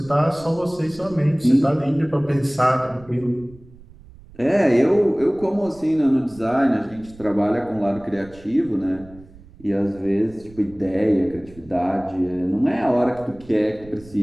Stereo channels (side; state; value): right; noise; rumble, 22 dB below the sound